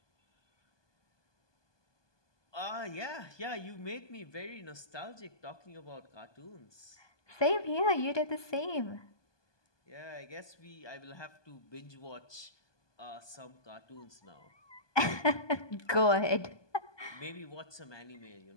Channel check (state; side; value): late; right; 1.2 ms